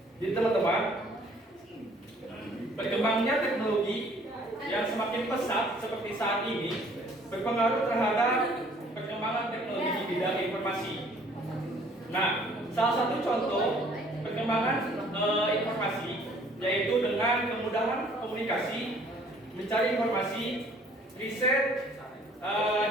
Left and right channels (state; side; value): normal; both; correlation 0.57